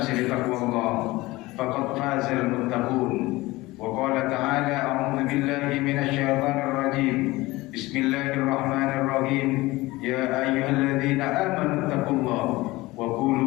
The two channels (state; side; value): quieter; right; 20.0 dB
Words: بتقوى الله، فقد فاز المتقون. وقال تعالى: أعوذ بالله من الشيطان الرجيم، بسم الله الرحمن الرحيم، يا أيها الذين آمنوا اتقوا الله